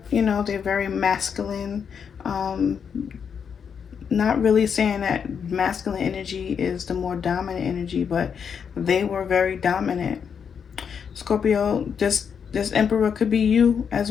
you know, they're very masculine. Not really saying that masculine energy is the more dominant energy, but they were very dominant. Scorpio, this Emperor could be you as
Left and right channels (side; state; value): right; quieter; 7.0 dB